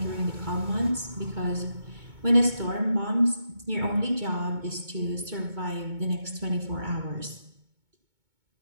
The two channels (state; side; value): late; left; 2.2 ms